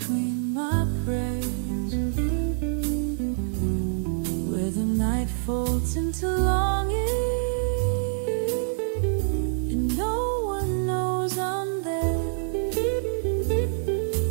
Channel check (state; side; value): silent; left; digital silence